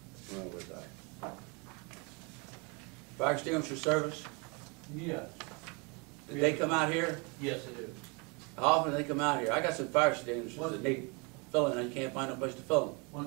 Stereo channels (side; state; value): left; quieter; 31.3 dB